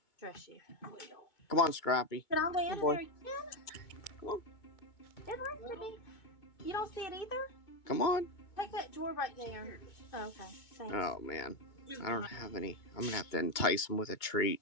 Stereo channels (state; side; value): late; right; 2.2 ms